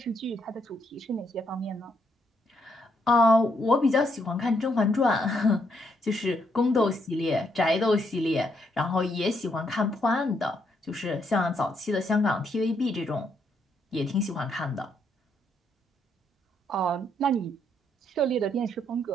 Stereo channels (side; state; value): both; normal; correlation 0.75